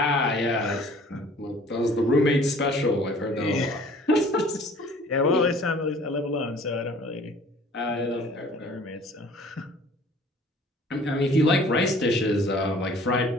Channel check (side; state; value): both; normal; correlation 0.51